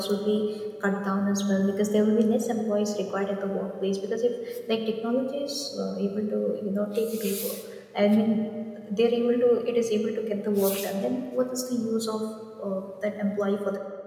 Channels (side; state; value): both; identical; correlation 1.00